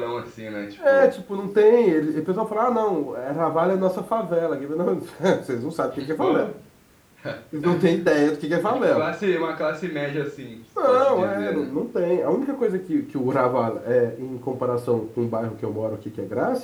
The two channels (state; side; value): identical; both; correlation 1.00